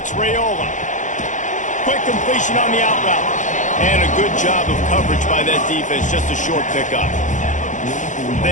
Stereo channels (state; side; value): late; right; 0.36 ms